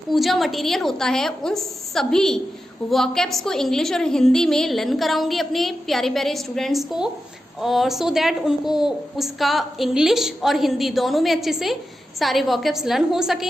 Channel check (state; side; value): normal; both; correlation 0.90